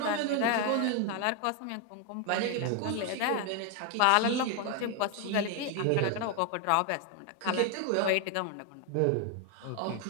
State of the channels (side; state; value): both; different; correlation 0.01